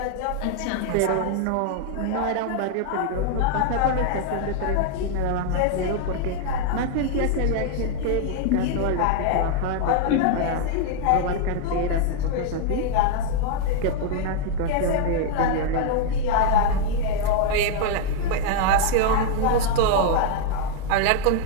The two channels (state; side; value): different; both; correlation 0.00